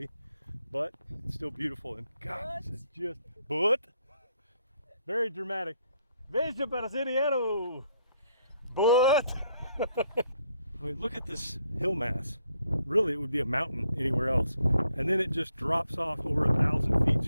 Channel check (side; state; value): both; inverted; correlation -0.72